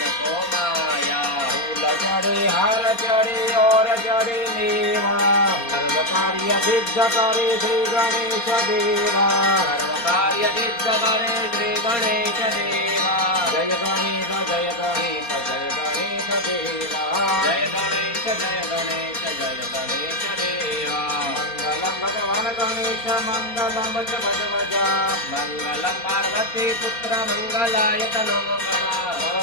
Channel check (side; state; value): right; late; 4.3 ms